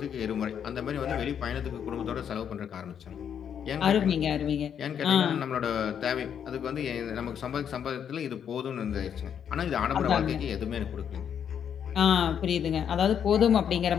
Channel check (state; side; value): quieter; right; 8.4 dB